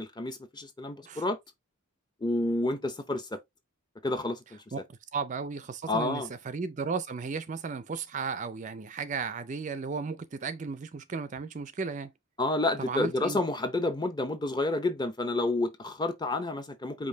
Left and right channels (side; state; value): both; normal; correlation 0.48